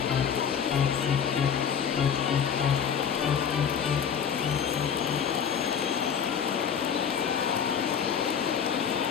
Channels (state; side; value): quieter; right; 7.6 dB